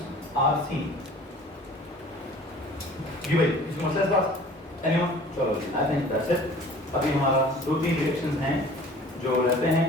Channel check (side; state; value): both; normal; correlation 0.47